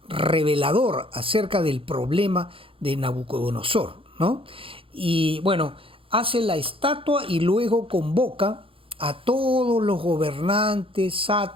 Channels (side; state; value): left; late; 0.26 ms